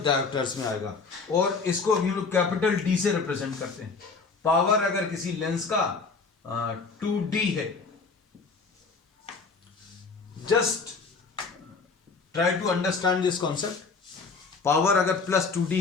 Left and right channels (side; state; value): right; quieter; 4.6 dB